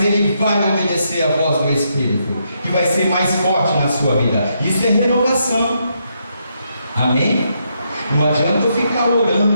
ele vai obedecer a voz do Espírito, que vai ser mais forte na sua vida. Isso é renovação. Amém? Não adianta eu ficar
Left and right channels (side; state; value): both; inverted; correlation -0.78